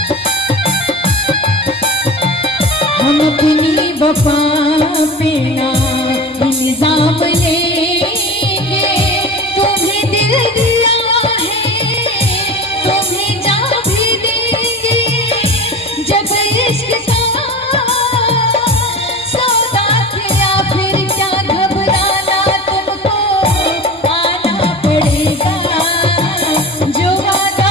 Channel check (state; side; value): normal; both; correlation 0.33